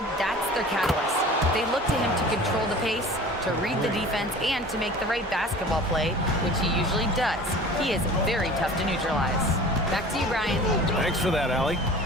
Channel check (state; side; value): normal; both; correlation 0.41